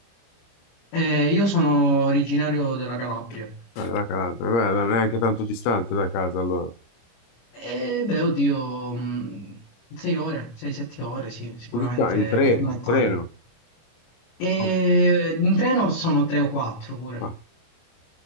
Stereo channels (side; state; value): right; late; 26 ms